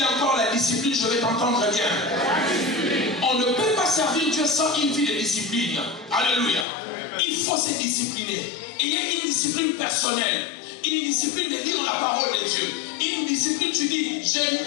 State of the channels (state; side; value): drops out; right; at 6.7 s